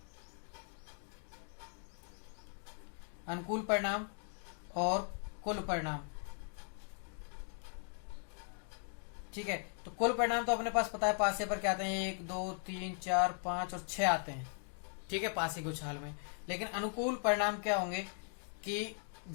अनुकूल परिणाम और कुल परिणाम। ठीक है, तो कुल परिणाम तो अपने पास पता है, पासे पर क्या आते हैं? 1 2 3 4 5 और 6 आते हैं। ठीक है, पासे के उछाल में। लेकिन अनुकूल परिणाम क्या होंगे कि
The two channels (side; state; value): right; silent; 52 dB below the other